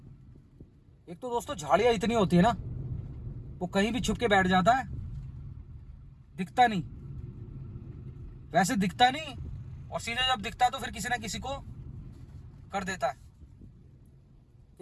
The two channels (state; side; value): identical; both; correlation 1.00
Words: एक तो दोस्तों झाड़ियां इतनी होती है ना, वो कहीं भी छुप के बैठ जाता है, दिखता नहीं, वैसे दिखता नहीं, और सीधे जब दिखता है तो फिर किसी ना किसी को कर देता है।